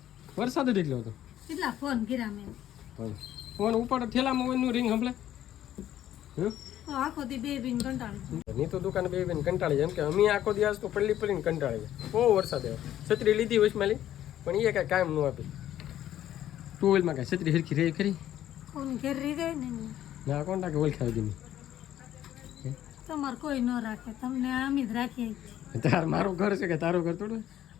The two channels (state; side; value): quieter; right; 12.0 dB